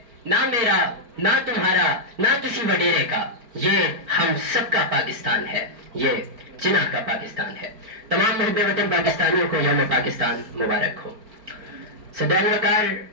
نہ میرا نہ تمہارا نہ کسی وڈیرے کا، یہ ہم سب کا پاکستان ہے، یہ جناح کا پاکستان ہے۔ تمام محب وطن پاکستانیوں کو یوم پاکستان مبارک ہو۔ صدر وقار،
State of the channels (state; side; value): late; left; 4.5 ms